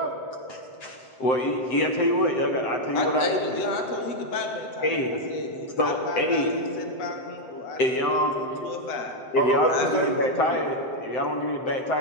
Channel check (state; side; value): late; right; 7.7 ms